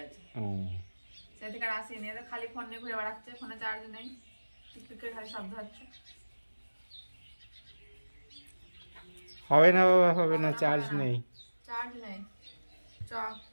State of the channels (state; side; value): inverted; both; correlation -1.00